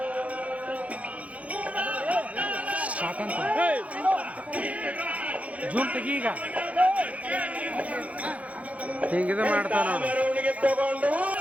ಜೂಮ್ ತೆಗಿ. ಈಗ ಹಿಂಗಿದ ಮಾಡ್ತಾವ ನೋಡ್ರಿ.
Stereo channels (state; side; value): late; left; 0.067 ms